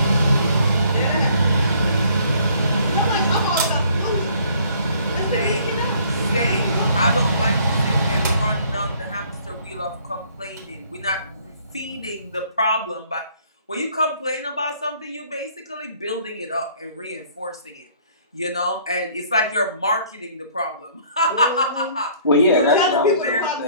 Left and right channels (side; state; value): both; inverted; correlation -0.59